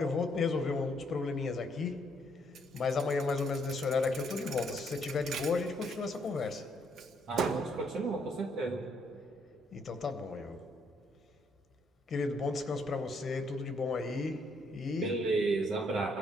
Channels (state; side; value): normal; both; correlation 0.71